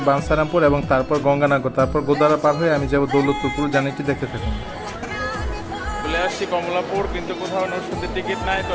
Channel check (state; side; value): identical; both; correlation 1.00